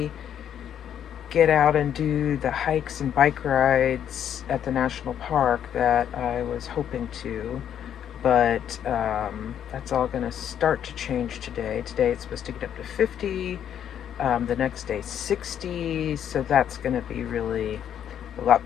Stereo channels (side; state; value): right; quieter; 9.5 dB